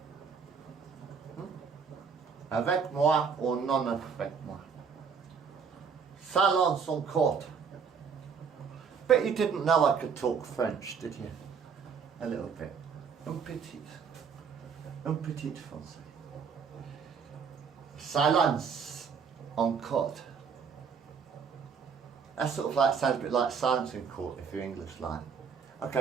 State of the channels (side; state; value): left; quieter; 6.2 dB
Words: Avec moi ou non avec moi. Salon son court. But you didn't know I could talk French, did you? A little bit. Un petit. Un petit français. Silence en court. That sort of like sounds a bit like silence in court if you're English like.